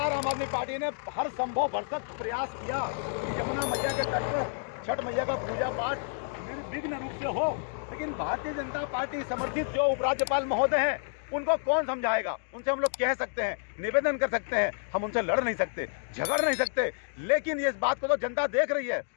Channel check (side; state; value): right; silent; digital silence